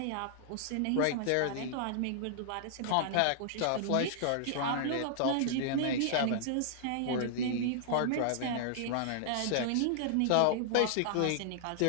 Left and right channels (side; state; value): both; different; correlation -0.01